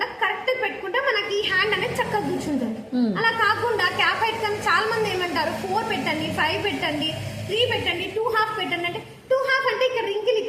కరెక్ట్ పెట్టుకుంటే మనకి ఈ హ్యాండ్ అనేది చక్కగా కూర్చుంటుంది. అలా కాకుండా క్యాప్ హైట్ కానీ చాలా మంది ఏమంటారు 4 పెట్టండి, 5 పెట్టండి, 3 పెట్టండి, 2.5 పెట్టండి అంటే 2.5 అంటే ఇక్కడ రింకిల్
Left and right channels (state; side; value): identical; both; correlation 1.00